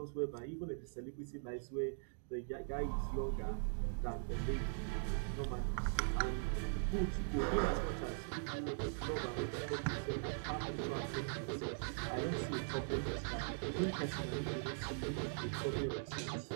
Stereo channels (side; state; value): left; silent; digital silence